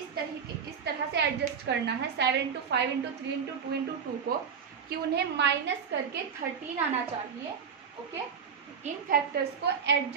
तरह से एडजस्ट करना है 7 इंटू 5 इंटू 3 इंटू 2 इंटू 2 को, कि उन्हें माइनस करके 13 आना चाहिए। ओके, इन फैक्टर्स को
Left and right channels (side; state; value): left; quieter; 6.7 dB